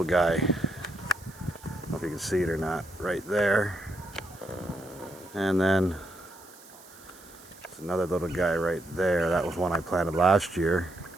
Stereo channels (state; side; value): noise; right; hiss, 22 dB below the sound